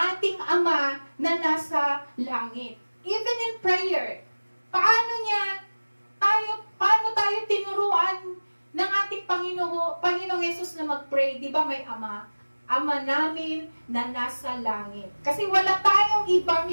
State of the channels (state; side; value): inverted; both; correlation -1.00